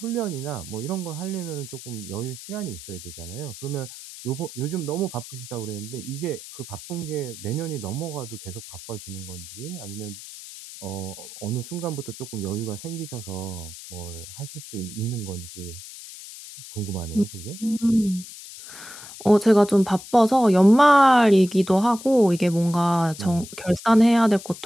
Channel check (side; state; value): left; noise; hiss, 14 dB below the sound